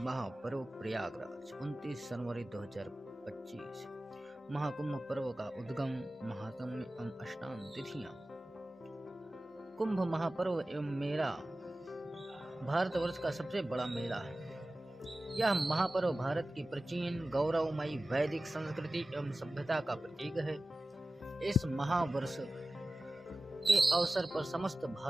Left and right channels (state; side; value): normal; both; correlation 0.96